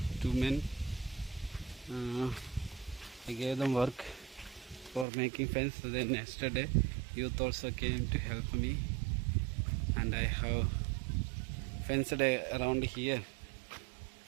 men. I gave them work for making fence. Then yesterday youth also came to help me, and I have fenced around here.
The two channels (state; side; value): drops out; left; at 5.1 s